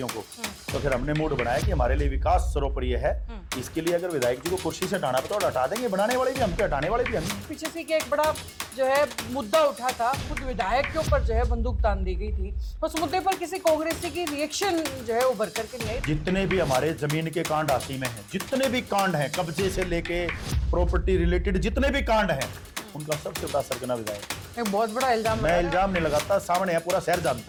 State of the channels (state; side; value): identical; both; correlation 1.00